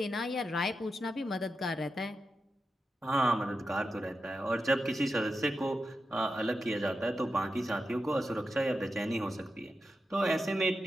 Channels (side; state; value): both; normal; correlation 0.89